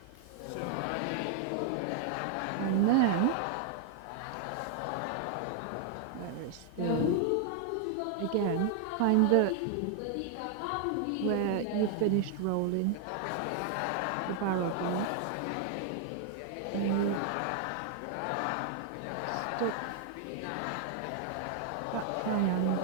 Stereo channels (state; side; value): different; both; correlation 0.00